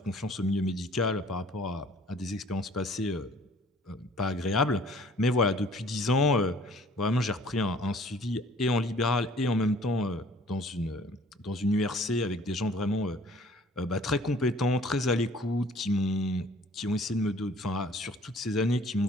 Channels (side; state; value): both; normal; correlation 0.54